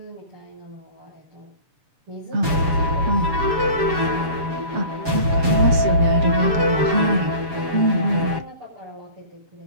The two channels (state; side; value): late; left; 7.2 ms